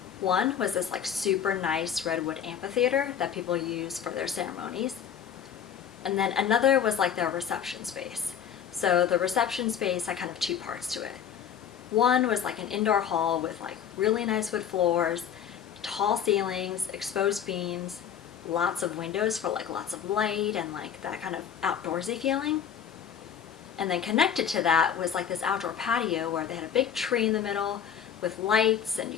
One was this like super nice redwood amphitheater that people use for their ceremonies. And then another was like their reception space. So the reception space had kind of two parts to it. One was like an indoor hall with like really nice wood floors, tall ceilings, exposed beams, lots of windows for like lots of light and like that kind of outdoorsy feeling. And then connected to that was like this outdoor patio where they had a big tree in the middle with lights, and you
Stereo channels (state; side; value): quieter; right; 8.4 dB